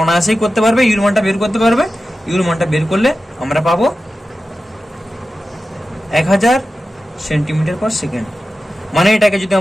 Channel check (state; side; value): normal; both; correlation 0.93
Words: অনায়াসেই করতে পারবে, ইউর মানটা বের করতে পারবে। ইউর মানটা বের করলে আমরা পাবো 1000 সেন্টিমিটার পার সেকেন্ড, মানে এটাকে যদি